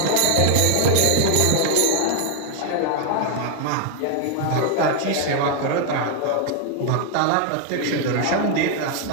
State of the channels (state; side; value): different; both; correlation 0.00